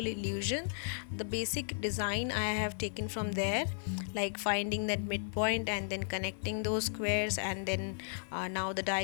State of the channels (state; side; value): silent; right; digital silence